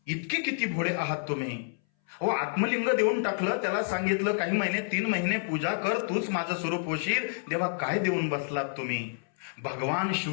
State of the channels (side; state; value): right; silent; 59 dB below the other